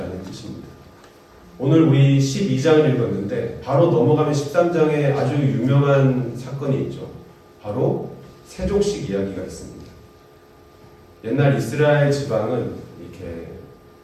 뜻입니다. 오늘 우리 12장을 읽었는데 바로 넘어가면 13장에 아주 유명한 사건이 있죠. 바로 세족식 이야기가 있습니다. 옛날 이스라엘 지방은 이렇게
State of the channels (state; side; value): identical; both; correlation 1.00